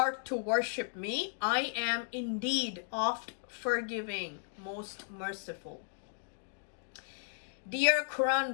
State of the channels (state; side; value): silent; right; digital silence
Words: to worship me, I am indeed oft forgiving, most merciful. Dear